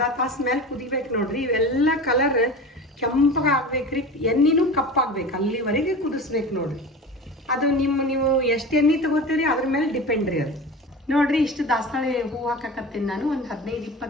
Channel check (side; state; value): both; normal; correlation 0.33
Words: ತಾಸು ಮೇಲೆ ಕುದಿಬೇಕು ನೋಡ್ರಿ. ಇವೆಲ್ಲ ಕಲರ್ ಕೆಂಪಗೆ ಆಗ್ಬೇಕ್ರಿ, ಎಣ್ಣೆನೂ ಕಪ್ಪಾಗ್ಬೇಕು, ಅಲ್ಲಿವರೆಗೆ ಕುದಿಸ್ಬೇಕು ನೋಡ್ರಿ. ಅದು ನೀವು ಎಷ್ಟು ಎಣ್ಣೆ ತಗೋತೀರಿ ಅದ್ರ ಮೇಲೆ ಡಿಪೆಂಡ್ ರೀ ಅದು. ನೋಡ್ರಿ, ಇಷ್ಟು ದಾಸವಾಳ ಹೂವು ಹಾಕಾಕತ್ತೀನಿ ನಾನು. ಒಂದು